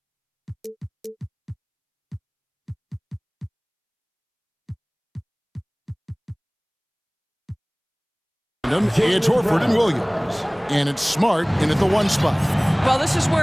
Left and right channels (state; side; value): identical; both; correlation 1.00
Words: It's Horford and Williams. And it's Smart in at the 1 spot. Well, this is